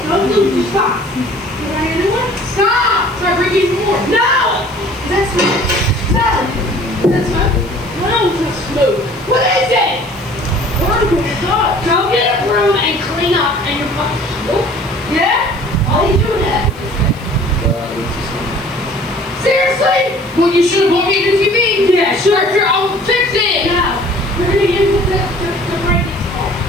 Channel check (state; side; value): noise; left; hiss, 26 dB below the sound